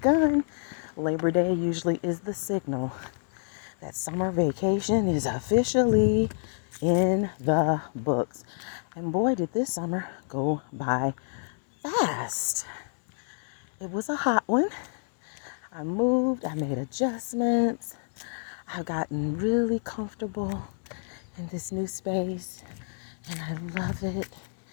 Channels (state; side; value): silent; right; digital silence